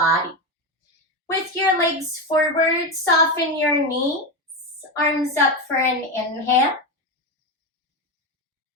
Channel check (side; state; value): both; normal; correlation 0.15